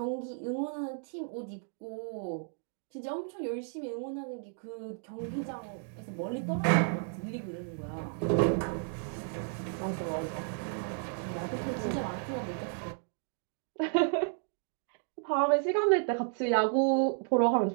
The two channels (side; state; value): left; silent; 56 dB below the other